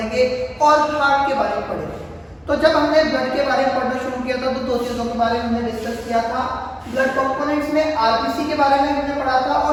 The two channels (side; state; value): both; identical; correlation 1.00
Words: और हार्ट के बारे में पढ़ेंगे। तो जब हमने ब्लड के बारे में पढ़ना शुरू किया था तो दो चीज़ों के बारे में हमने डिस्कस किया था। ब्लड कंपोनेंट्स में आरबीसी के बारे में हमने पढ़ा था